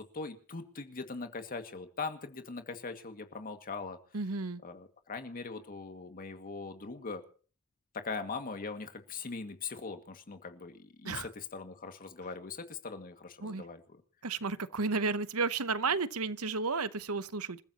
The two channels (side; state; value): both; normal; correlation 0.00